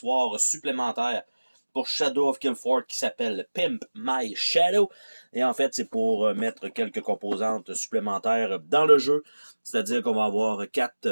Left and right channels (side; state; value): both; inverted; correlation -1.00